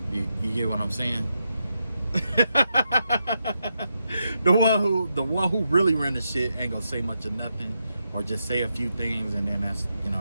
You get what I'm saying? the one who really run the shit ain't gonna say much of nothing, or just say a few things, and then that's, you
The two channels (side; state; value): both; inverted; correlation -0.84